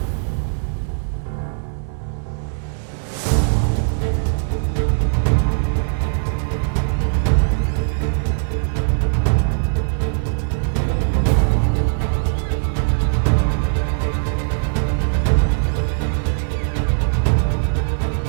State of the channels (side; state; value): left; silent; 66 dB below the other